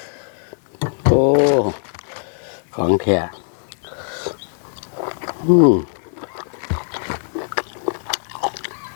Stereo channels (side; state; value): right; silent; digital silence